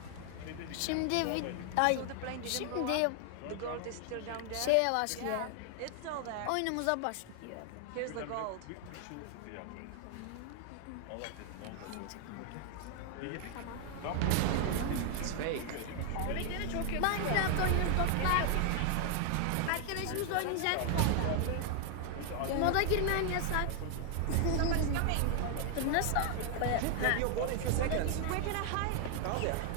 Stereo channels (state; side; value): different; both; correlation 0.00